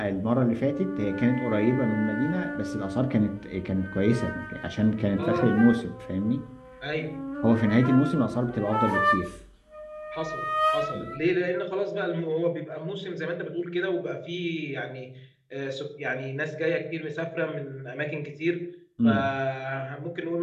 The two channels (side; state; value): both; identical; correlation 1.00